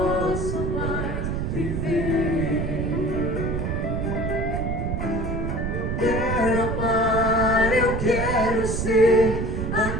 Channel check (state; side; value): noise; right; rumble, 2 dB below the sound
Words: mais viver. Quero amar, eu quero ser